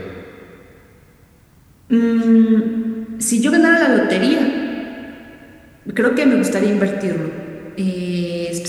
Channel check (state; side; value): identical; both; correlation 1.00